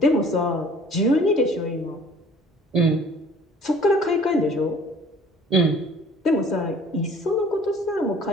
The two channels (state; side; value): normal; both; correlation 0.51